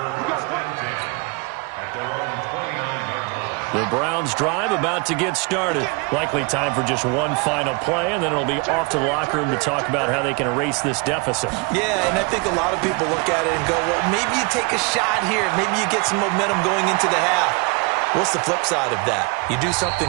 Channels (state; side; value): quieter; left; 30.4 dB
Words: At their own 29-yard line. The Browns drive about to get started. Likely time for just one final play, and then it'll be off to the locker room to talk about how they can erase this deficit. Yeah, and I think a lot of people look at it and go, well, maybe you take a shot here. Maybe you get some momentum going into the half. What's the flip side of that? You do something